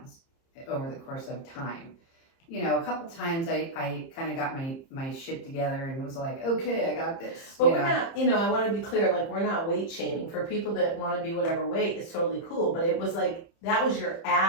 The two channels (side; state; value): right; late; 30 ms